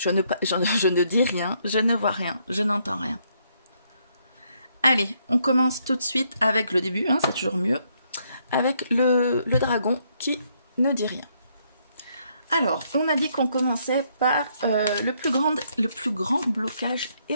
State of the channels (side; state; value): both; inverted; correlation -0.72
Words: dis rien, je ne vois rien, je n'entends rien. Allez, on commence tout de suite avec le début, c'est toujours mieux, avec le dragon qui ne dit rien. Alors, on a dit qu'on commençait par le plus grand blocage